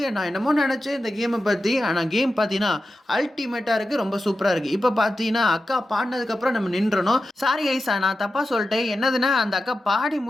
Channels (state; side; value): normal; both; correlation 0.92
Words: நான் என்னமோ நெனச்சேன் இந்த கேம பத்தி. ஆனா கேம் பார்த்தீங்கன்னா, அல்டிமேட்டா இருக்கு. ரொம்ப சூப்பரா இருக்கு. இப்ப பார்த்தீங்கன்னா, அக்கா பாடுனதுக்கு அப்புறம் நம்ம நின்றணும். சாரி கைஸ் நான் தப்பா சொல்ட்டேன். என்னதுன்னா, அந்த அக்கா பாடி